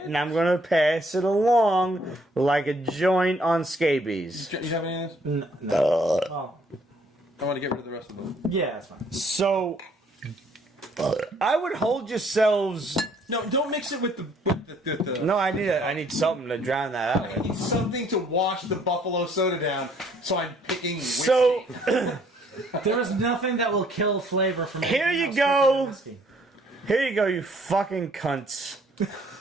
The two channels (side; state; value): both; normal; correlation 0.63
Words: and I'm gonna pass it along like a joint on scabies. You have any of this? No. Oh. I want to get rid of the rest of them. Yeah, that's fine. So, I would hold yourselves. No, don't mix it with the No, I need something to drown that out I with. need something to wash the buffalo soda down, so I'm picking whiskey. So, There is nothing that will kill flavor from Here anything you else go. than whiskey. here you go, you fucking cunts.